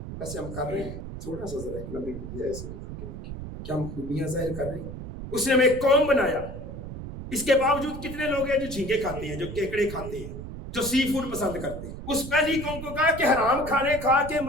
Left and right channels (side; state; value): right; noise; rumble, 9 dB below the sound